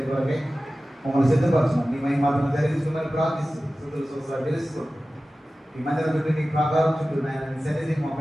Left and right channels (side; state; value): both; normal; correlation 0.95